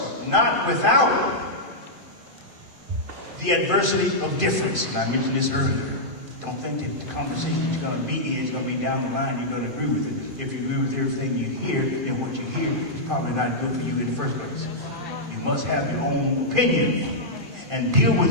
not without the adversity of difference. And I mentioned this earlier. Don't think that the conversation you're going to be in is going to be down the line, you're going to agree with it. If you agree with everything you hear, then what you hear is probably not good for you in the first place. You must have your own opinion and deal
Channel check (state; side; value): late; left; 2.5 ms